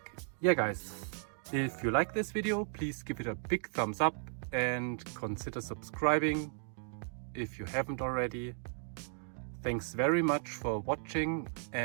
Yeah guys, if you like this video, please give it a big thumbs up and consider subscribing if you haven't already. Thanks very much for watching,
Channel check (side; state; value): left; silent; 54 dB below the other